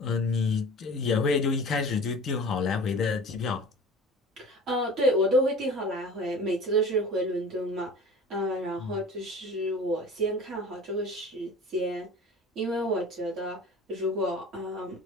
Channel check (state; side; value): normal; both; correlation 0.40